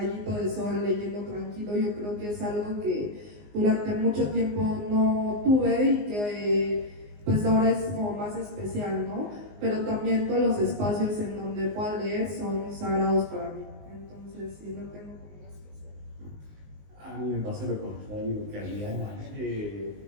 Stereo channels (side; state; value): left; late; 19 ms